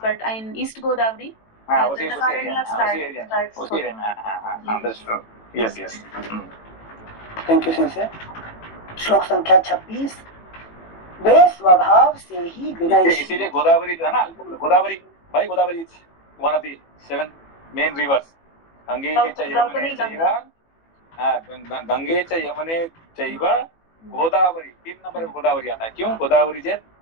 बट इन ईस्ट गोदावरी। हाँ, उसी एरिया में। हाँ, understood. Yes. Thank you sensei. श्लोक संख्या 26। वे स्वभाव से ही विनय, इसीलिए गोदावरी जो है ना, Godavari is one of the 7 main rivers. Gange च यमुने चैव, गंगे च यमुने चैव गोदावरी, 3 नंबर में गोदावरी आता है। क्यों? गोदावरी जे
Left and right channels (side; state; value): right; late; 18 ms